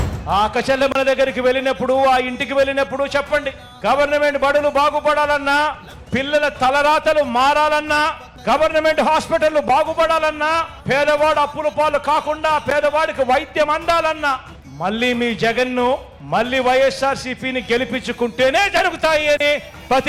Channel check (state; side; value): identical; both; correlation 1.00